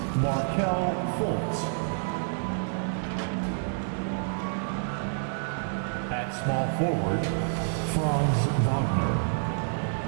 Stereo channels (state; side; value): silent; left; digital silence